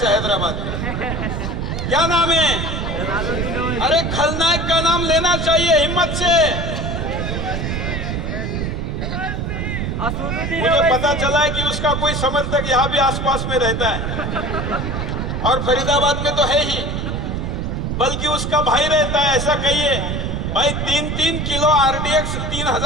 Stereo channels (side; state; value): right; noise; rumble, 2 dB below the sound